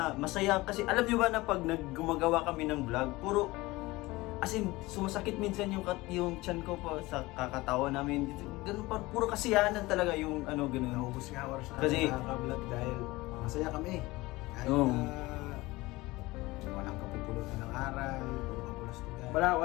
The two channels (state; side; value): quieter; right; 20.6 dB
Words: masaya. Kasi alam niyo ba na pag gumagawa kami ng vlog, puro, as in, sumasakit minsan yung tiyan ko pa sa kakatawa namin. Ganun pa, puro kasiyahan talaga yung ganun. Naubos nga oras na Kasi- nakaka-vlog dahil masaya kami. Kahit Oo. walang kapupulutan ng aral, puro kapulastugan.